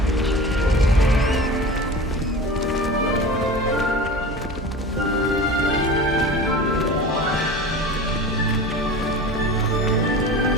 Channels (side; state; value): both; normal; correlation 0.34